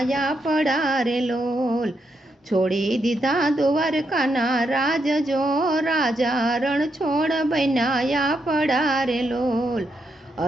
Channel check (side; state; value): both; normal; correlation 0.81